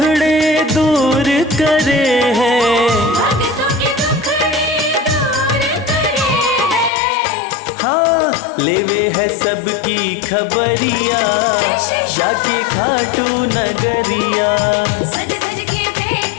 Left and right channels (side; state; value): right; drops out; at 6.9 s